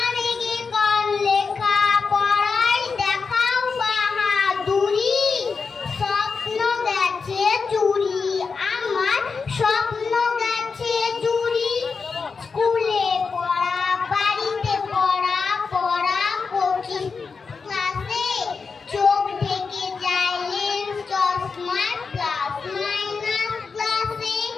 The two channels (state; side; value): quieter; right; 5.0 dB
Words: রেগে গান লেখা পড়াই দেখাও বাহাদুরি। স্বপ্ন গেছে চুরি আমার, স্বপ্ন গেছে চুরি। স্কুলে পড়া বাড়িতে পড়া, পড়া কোচিং ক্লাসে চোখ ঢেকে যায় লেন্স চশমার প্লাস মাইনাস ক্লাসে।